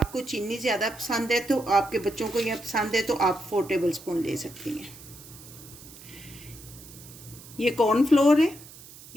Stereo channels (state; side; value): noise; right; hiss, 18 dB below the sound